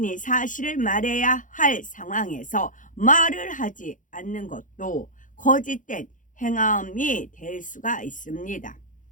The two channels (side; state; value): right; late; 0.38 ms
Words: 사실을 말해야 할 상황에서 말을 하지 않는 것도 거짓된 행함이 될 수가 있습니다.